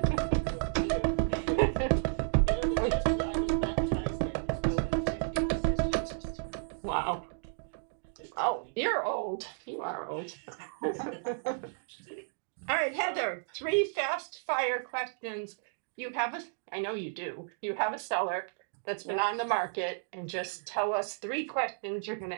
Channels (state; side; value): silent; left; digital silence